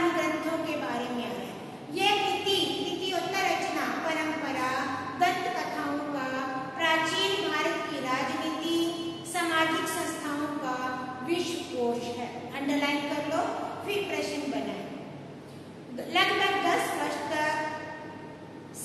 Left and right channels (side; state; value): both; identical; correlation 1.00